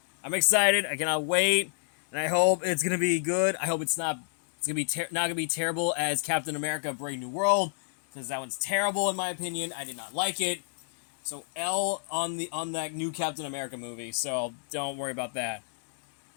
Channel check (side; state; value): right; silent; digital silence